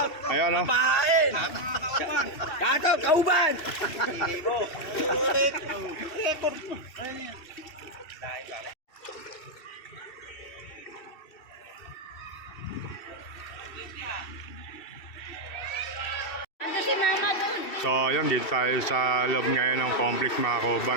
Ayan, oh. Gato, kauban! Ando si mama doon. So, ayan, dito tayo sa loob ngayon ng complex mga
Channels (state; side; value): late; right; 2.7 ms